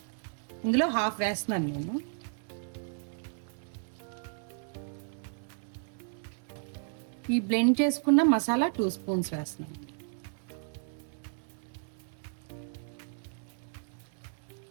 ఇందులో హాఫ్ వేస్తున్నాను నేను. ఈ బ్లెండ్ చేసుకున్న మసాలా 2 స్పూన్స్ వేస్తున్నాను.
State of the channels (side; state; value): left; silent; digital silence